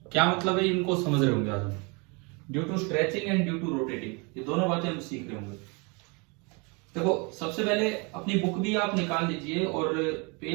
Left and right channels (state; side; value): quieter; left; 30.9 dB